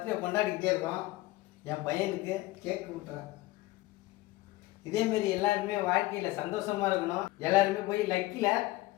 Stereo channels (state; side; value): quieter; right; 18.7 dB